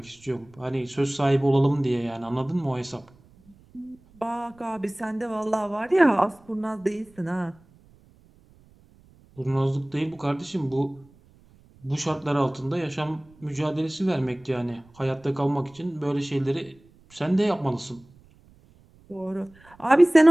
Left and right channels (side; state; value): right; noise; rumble, 28 dB below the sound